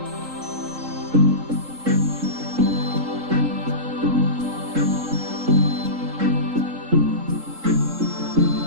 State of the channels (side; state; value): left; late; 3.7 ms